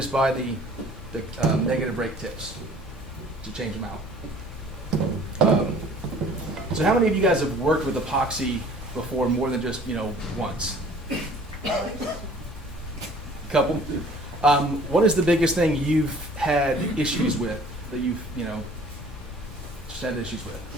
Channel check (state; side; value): normal; both; correlation 0.51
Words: buy the negative rake tips to change them out. So how many of you guys have worked with epoxy before more than just, once? A couple? What is the biggest thing you've had issues with that you've, just had issues with?